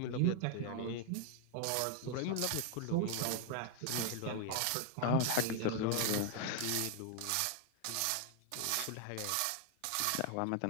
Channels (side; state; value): both; different; correlation 0.00